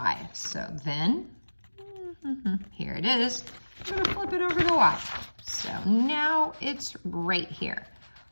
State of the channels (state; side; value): inverted; both; correlation -1.00